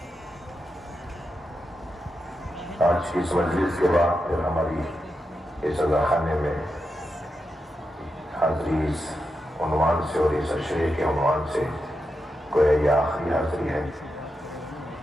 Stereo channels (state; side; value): normal; both; correlation 0.87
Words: آج کی اس مجلس کے بعد پھر ہماری اس خانے میں حاضری اس عنوان سے اور اس اشرے کے عنوان سے گویا یہ آخری حاضری ہے،